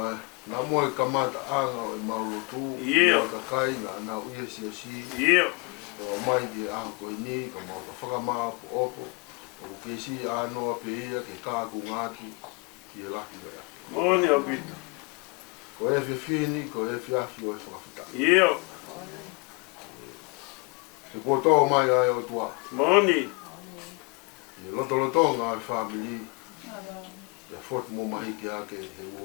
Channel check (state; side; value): quieter; right; 29.4 dB